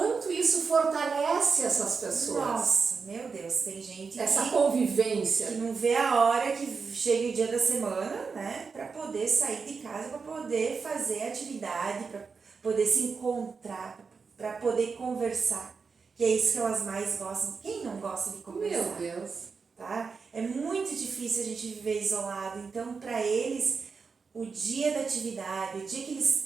isso fortalece essas pessoas. Nossa, meu Deus, tem gente essa convivência que não vê a hora que chega o dia da semana, né, para poder sair de casa, para poder fazer atividade, para poder se encontrar, para poder conversar, que é isso que elas mais gostam. Quem não gosta de conversar? Meu Deus. Tá? É muito difícil a gente viver isolado, então para eles o dia da atividade, o dia que eles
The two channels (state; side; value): quieter; left; 5.1 dB